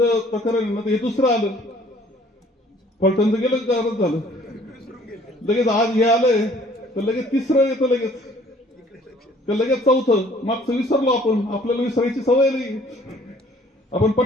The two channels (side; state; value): both; normal; correlation 0.57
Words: प्रकरण ना, हे दुसरं आलं. फलटणचं गेलं गारच झालं, लगेच आज हे आलंय तर लगेच तिसरं येतं, लगेच चौथं. मागचं विसरलो आपण, आपल्याला विसरायची सवय नाही, आपण